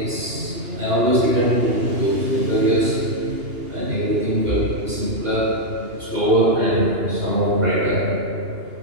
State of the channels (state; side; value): late; left; 2.8 ms